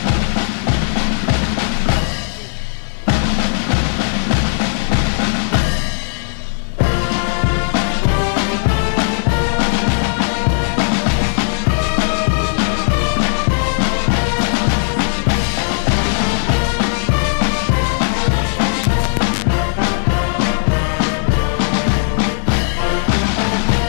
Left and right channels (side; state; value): right; silent; 68 dB below the other